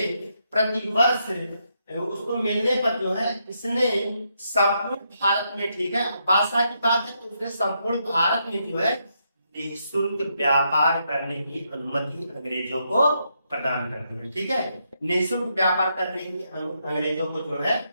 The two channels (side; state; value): both; inverted; correlation -0.79